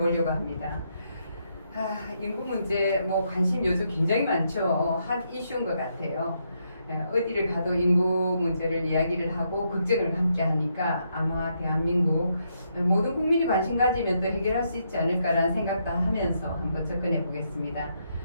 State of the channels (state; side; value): inverted; both; correlation -0.78